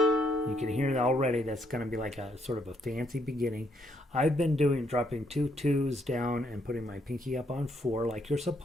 can hear that already. That's going to be like a sort of a fancy beginning. I've been dropping 2 2s down and putting my pinky up on 4 like you're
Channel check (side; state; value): both; normal; correlation 0.73